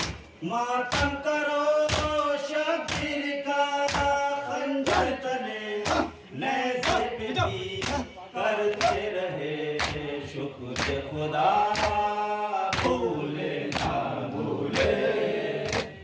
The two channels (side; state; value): both; identical; correlation 1.00